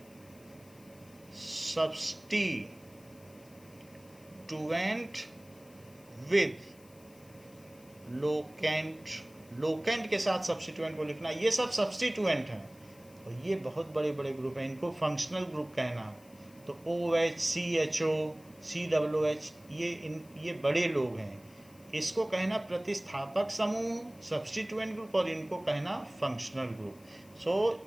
substituent with locant. Locant के साथ सब्स्टिट्यूएंट को लिखना, ये सब सब्स्टिट्यूएंट हैं। और ये बहुत बड़े बड़े ग्रुप हैं, इनको फंक्शनल ग्रुप कहना। तो OH, CHO, COOH ये बड़े लोग हैं। इसको कहना प्रतिस्थापक समूह, सब्स्टिट्यूएंट ग्रुप, और इनको कहना फंक्शनल ग्रुप। सो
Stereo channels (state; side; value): noise; left; hiss, 26 dB below the sound